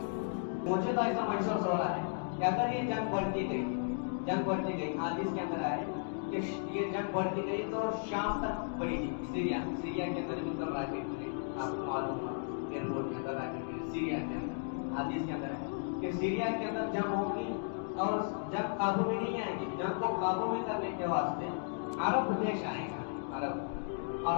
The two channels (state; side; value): silent; right; digital silence